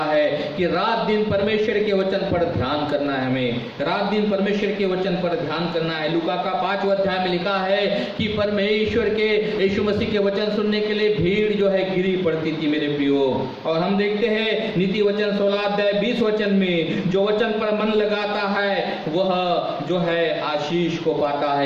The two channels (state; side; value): identical; both; correlation 1.00